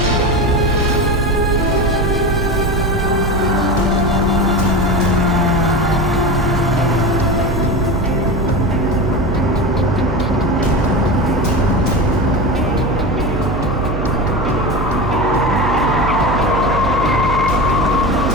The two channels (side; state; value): right; noise; hum, 4 dB below the sound